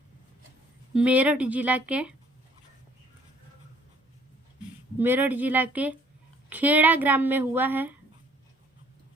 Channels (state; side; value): normal; both; correlation 0.60